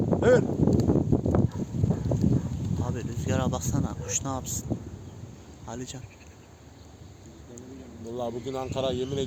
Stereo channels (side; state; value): both; identical; correlation 1.00